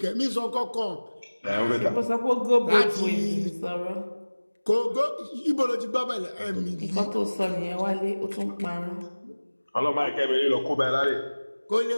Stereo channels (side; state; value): both; inverted; correlation -1.00